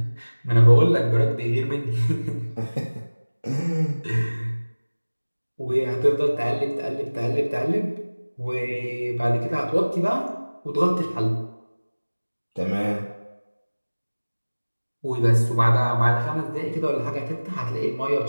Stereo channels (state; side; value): inverted; both; correlation -1.00